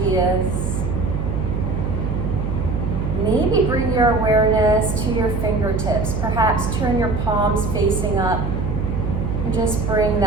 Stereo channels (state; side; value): noise; right; hum, 2 dB below the sound